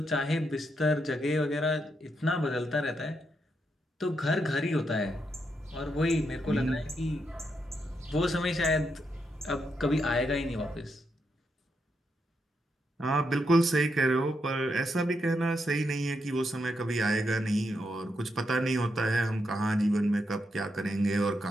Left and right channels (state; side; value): normal; both; correlation 0.81